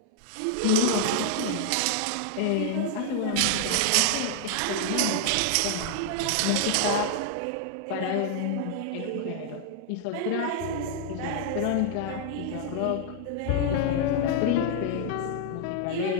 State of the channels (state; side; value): different; both; correlation 0.00